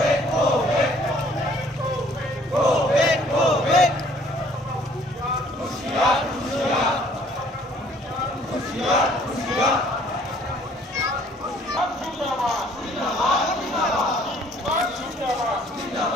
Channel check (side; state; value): both; normal; correlation 0.59